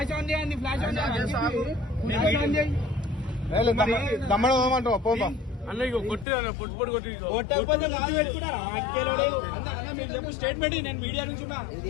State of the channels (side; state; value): right; drops out; at 6.2 s